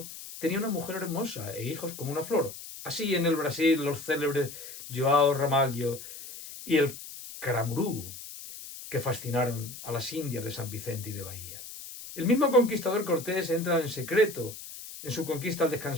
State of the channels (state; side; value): noise; left; hiss, 12 dB below the sound